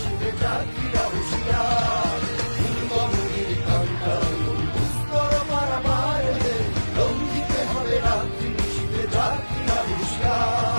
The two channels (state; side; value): inverted; both; correlation -1.00